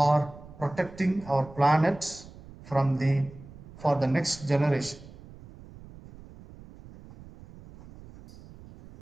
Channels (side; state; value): right; noise; rumble, 19 dB below the sound